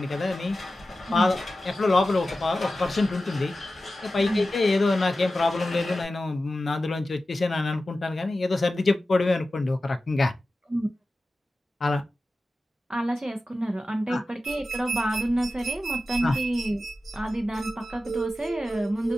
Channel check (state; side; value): normal; both; correlation 0.94